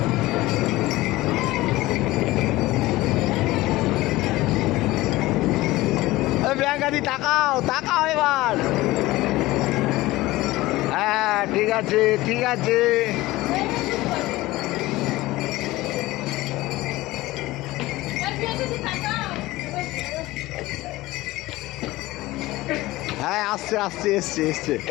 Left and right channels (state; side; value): quieter; right; 18.5 dB